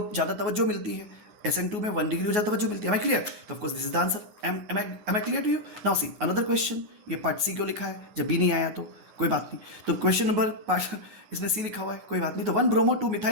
ज़्यादा तवज्जो मिलती है, SN2 में 1 डिग्री हो जाता है, मिलती है। Am I clear? तो of course this is the answer. Am I clear to you? Now see another question. ये पार्ट C क्यों लिखा है, जब B नहीं आया तो कोई बात नहीं, तो क्वेश्चन नंबर पार्ट इसमें C लिखा हुआ है, कोई बात नहीं। तो 1 ब्रोमो 2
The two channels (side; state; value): left; late; 9.4 ms